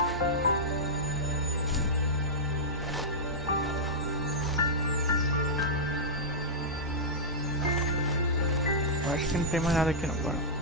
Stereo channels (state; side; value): normal; both; correlation -0.10